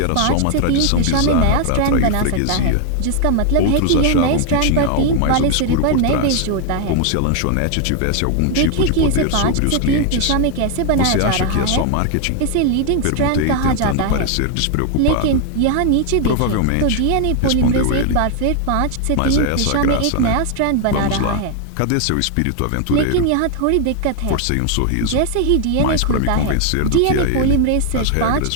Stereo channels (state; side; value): different; both; correlation 0.00